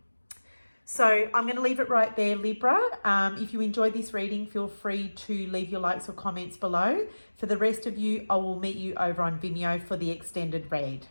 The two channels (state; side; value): inverted; both; correlation -1.00